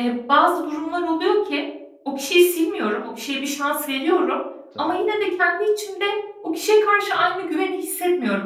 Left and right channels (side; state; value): both; identical; correlation 1.00